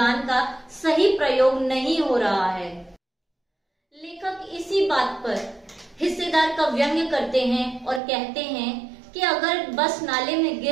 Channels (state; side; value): drops out; left; at 8.0 s